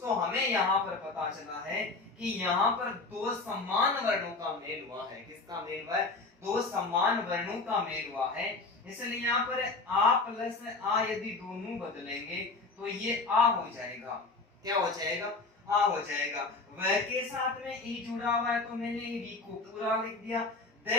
हमें यहाँ पर पता चला है कि यहाँ पर दो समान वर्णों का मेल हुआ है। किसका मेल हुआ है? दो समान वर्णों का मेल हुआ है। इसलिए यहाँ पर आ प्लस आ यदि दोनों बदलेंगे तो ये आ हो जाएगा। क्या हो जाएगा? आ हो जाएगा। वह के साथ में ई जुड़ा हुआ है तो मैंने वी को पूरा लिख दिया।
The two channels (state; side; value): quieter; right; 3.7 dB